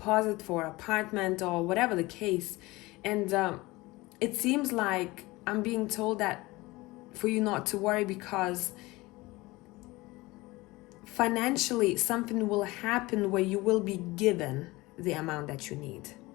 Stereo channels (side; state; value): right; quieter; 21.1 dB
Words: for an apartment, or whatever the case. And it seems like I'm being told that for you not to worry, because financially something will happen where you will be given the amount that you need